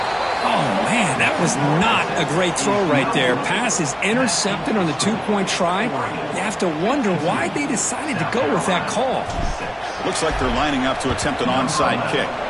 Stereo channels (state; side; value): identical; both; correlation 1.00